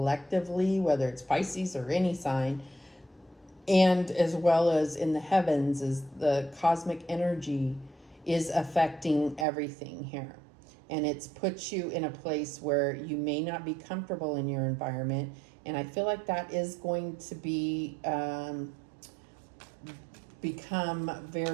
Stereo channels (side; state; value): left; drops out; at 9.5 s